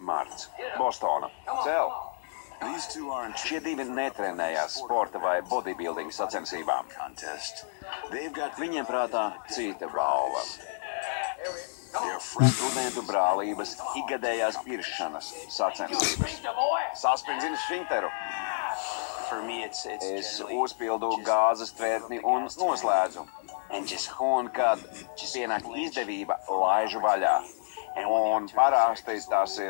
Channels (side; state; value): right; silent; digital silence